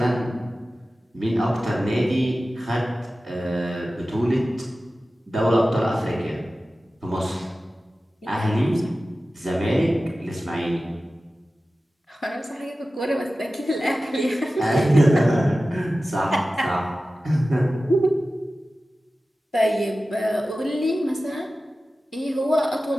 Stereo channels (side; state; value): both; normal; correlation 0.95